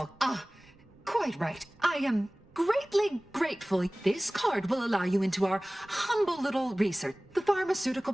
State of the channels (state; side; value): noise; right; rumble, 29 dB below the sound